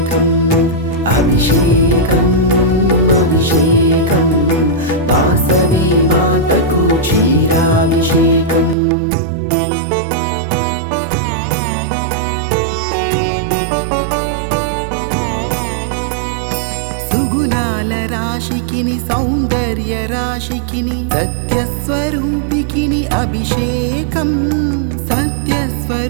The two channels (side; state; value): left; drops out; at 8.8 s